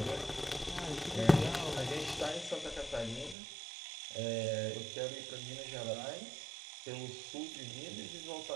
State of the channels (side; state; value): left; drops out; at 3.4 s